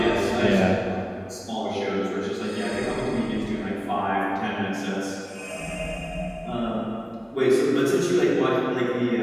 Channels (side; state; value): both; identical; correlation 1.00